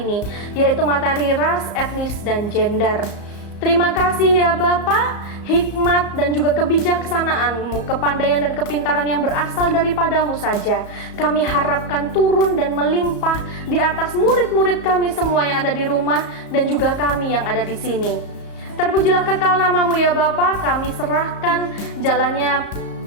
yaitu materi ras, etnis, dan gender. Terima kasih ya Bapa, hikmat dan juga kebijaksanaan-Mu, kepandaian dan kepintaran yang berasal daripadamu saja kami harapkan turun dan melimpah di atas murid-murid kami semua yang ada di rumah dan juga kami yang ada di sini. Terpujilah kekal nama-Mu ya Bapa, kami serahkan jalannya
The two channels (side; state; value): right; late; 34 ms